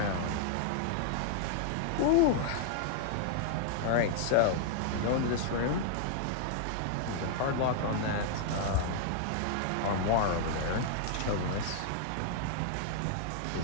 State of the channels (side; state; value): both; different; correlation 0.00